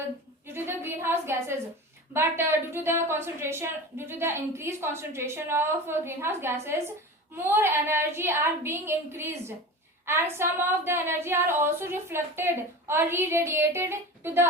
greenhouse gases. But due to the increased concentration of greenhouse gases, more energy are being increased, and some of the energy are also reflected or re-radiated to the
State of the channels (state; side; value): normal; both; correlation 0.31